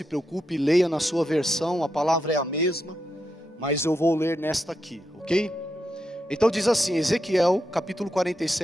preocupe, leia na sua versão, a palavra é a mesma, mas eu vou ler nesta aqui, ok? Então diz assim, Ezequiel capítulo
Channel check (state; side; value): normal; both; correlation 0.85